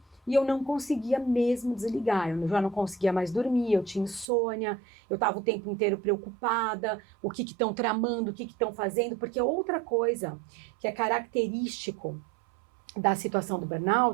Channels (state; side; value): drops out; left; at 4.2 s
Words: e eu não conseguia mesmo desligar. Eu já não conseguia mais dormir, eu tinha insônia, eu estava o tempo inteiro preocupada, o que estão tramando, o que estão fazendo, porque outra coisa que é característico da situação do